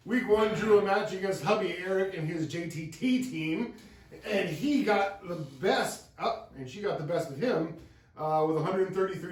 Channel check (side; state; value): both; identical; correlation 1.00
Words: drew a match against hubby Eric and his JTT team, and he got the best and she got the best of him with 133